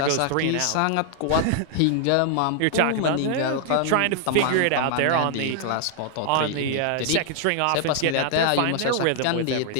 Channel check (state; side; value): different; both; correlation 0.00